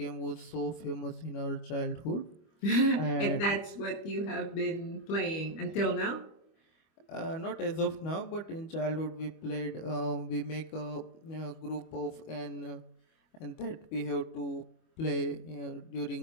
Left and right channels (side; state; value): right; late; 25 ms